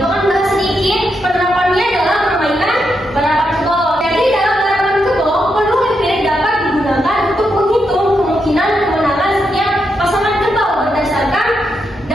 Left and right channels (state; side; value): normal; both; correlation 0.83